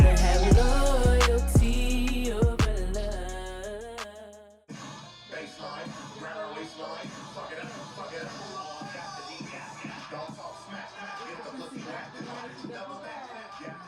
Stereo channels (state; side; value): identical; both; correlation 1.00